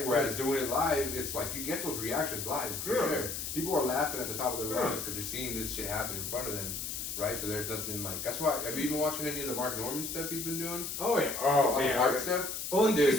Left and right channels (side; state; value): left; noise; hiss, 5 dB below the sound